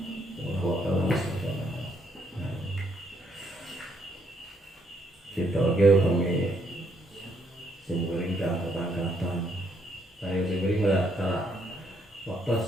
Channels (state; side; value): normal; both; correlation 0.72